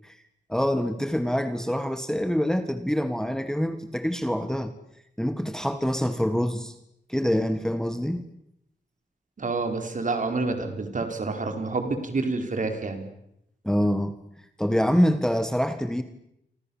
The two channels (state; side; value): normal; both; correlation 0.89